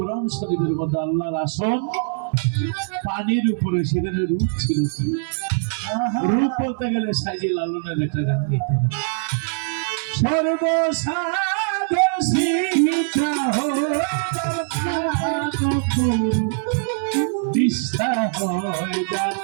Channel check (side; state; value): left; silent; 64 dB below the other